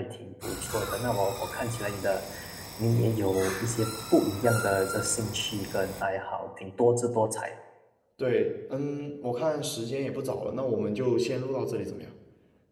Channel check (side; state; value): both; identical; correlation 1.00